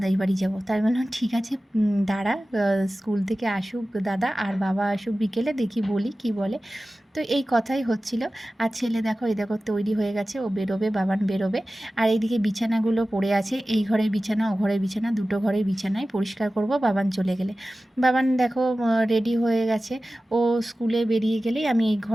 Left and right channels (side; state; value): both; normal; correlation 0.96